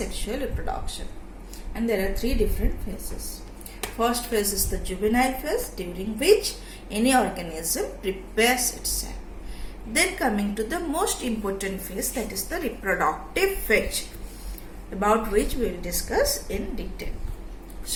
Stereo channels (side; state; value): both; identical; correlation 1.00